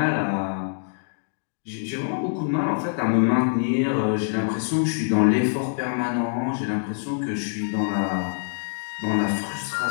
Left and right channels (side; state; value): right; silent; digital silence